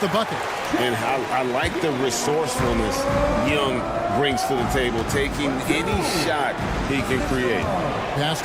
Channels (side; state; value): both; identical; correlation 1.00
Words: the bucket. And I like the resourcefulness Young brings to the table, taking any shot he can create. Pass